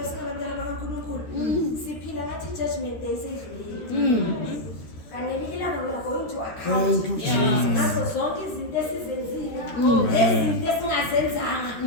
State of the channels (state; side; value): late; right; 13 ms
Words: singabantwana bakaNkulunkulu siphila ngathi judgment day seyidlulile kanti ngelinye ilanga we are going to account ngazo zonke izinto esizenzile lezinto esingazenzanga